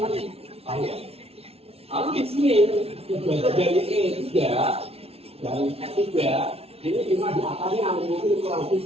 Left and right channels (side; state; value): left; late; 0.29 ms